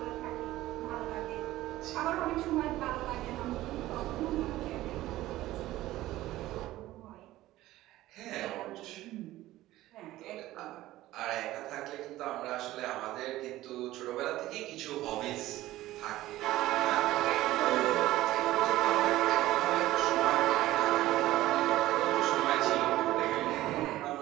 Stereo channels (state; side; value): quieter; left; 16.0 dB